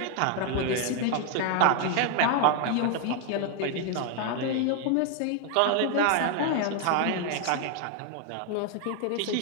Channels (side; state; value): both; different; correlation 0.01